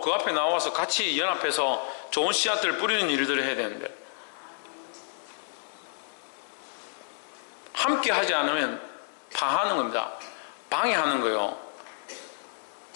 앞에 나와서 같이 연합해서 좋은 씨앗들을 뿌리는 일들을 해야 되는데, 함께 하지 않으면 파하는 겁니다. 방해하는 거예요.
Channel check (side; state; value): right; silent; digital silence